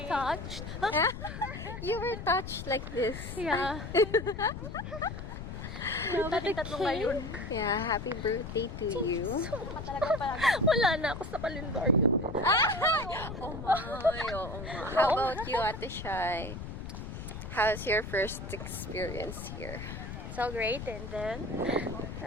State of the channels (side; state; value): left; noise; rumble, 8 dB below the sound